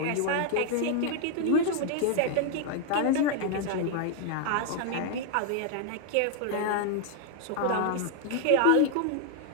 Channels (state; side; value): different; both; correlation 0.00